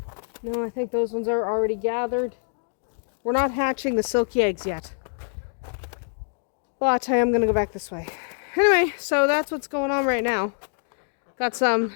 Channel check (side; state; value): right; silent; digital silence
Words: No, I think those ones are already gathered. We're not hatching the silky eggs yet. But I am going to go back this way. Anyway, so that's what's going on right now. Got some